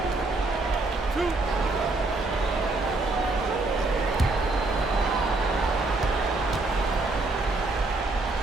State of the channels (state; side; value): quieter; left; 3.2 dB